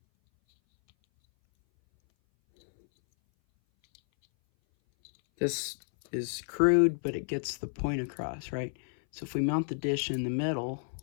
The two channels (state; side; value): silent; right; 57 dB below the other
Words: This is crude, but it gets the point across, right? So if we mount the dish in the middle